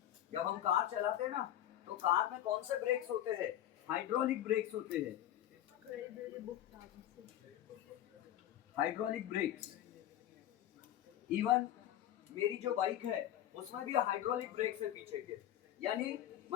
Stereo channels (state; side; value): quieter; right; 12.1 dB